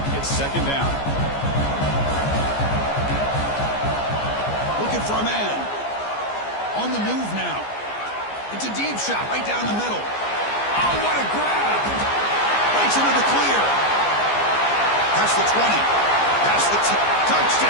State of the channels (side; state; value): right; late; 14 ms